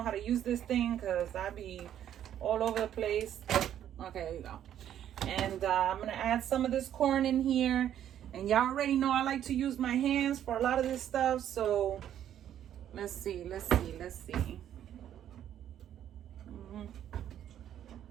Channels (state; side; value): quieter; left; 10.6 dB